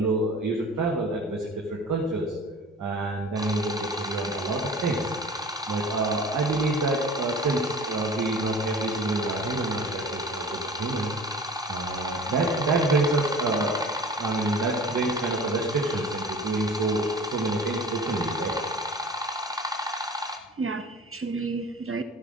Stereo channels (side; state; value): both; normal; correlation 0.42